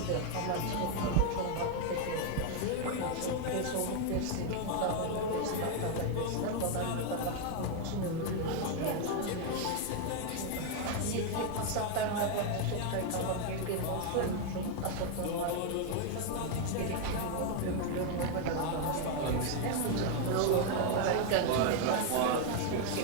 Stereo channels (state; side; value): different; both; correlation 0.01